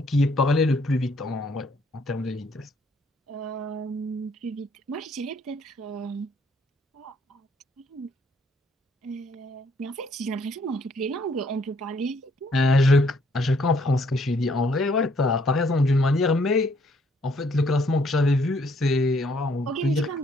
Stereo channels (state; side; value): normal; both; correlation 0.66